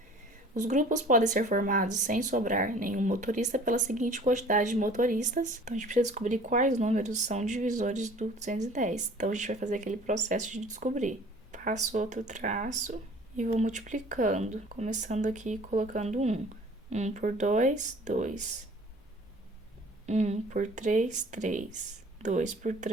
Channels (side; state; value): both; normal; correlation 0.49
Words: Os grupos podem ser formados sem sobrar nenhum motorista pela seguinte quantidade de motoristas. Então, a gente precisa descobrir quais números são divisores do 210. Então, a gente vai fazer aquele processo de descobrir. Passo outro traço e vou multiplicando. Começando aqui colocando 1. 1 por 2, 2. 1 por 3, 3. 2 por